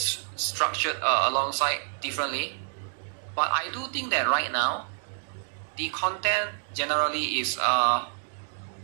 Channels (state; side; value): silent; left; digital silence